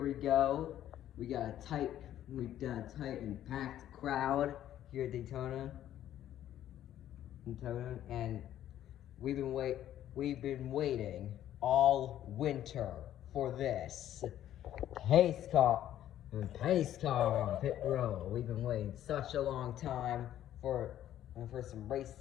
we go. We've got a tight and packed crowd here at Daytona, and we've been waiting all winter for this pace car on pit road. We've been waiting such a long time for some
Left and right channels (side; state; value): right; quieter; 11.9 dB